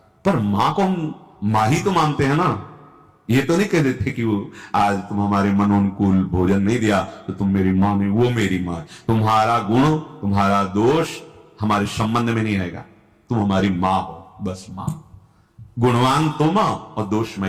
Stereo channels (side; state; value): both; identical; correlation 1.00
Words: पर मां को हम मां ही तो मानते हैं ना। ये तो नहीं कह देते कि वो आज तुम हमारे मनोनुकूल भोजन नहीं दिया तो तुम मेरी मां नहीं, वो मेरी मां। तुम्हारा गुण, तुम्हारा दोष हमारे संबंध में नहीं आएगा। तुम हमारी मां हो, बस मां। गुणवान तो मां और